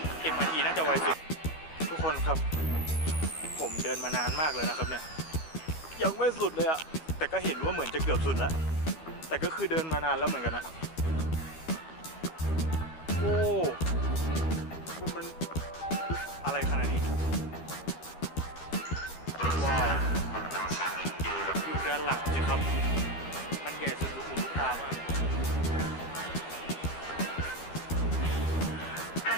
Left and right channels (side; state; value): right; late; 12 ms